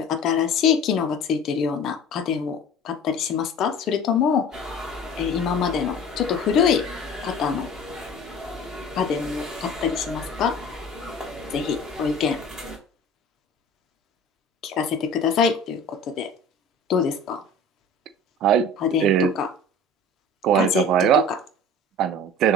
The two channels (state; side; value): normal; both; correlation 0.41